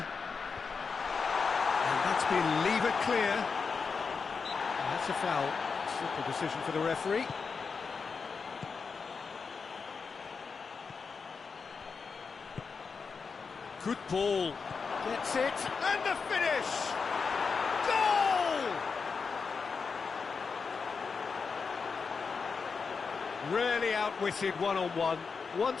And that's been levered clear. And that's a foul. Simple decision for the referee. Good ball. Gets it. And the finish! Goal! Really outwitted one-on-one.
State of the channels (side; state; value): right; quieter; 5.2 dB